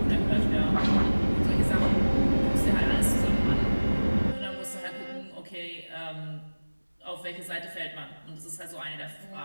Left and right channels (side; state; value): both; inverted; correlation -1.00